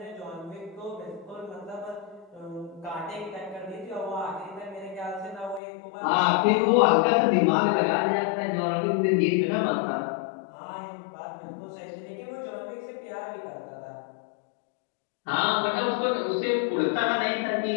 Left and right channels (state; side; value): drops out; right; at 5.6 s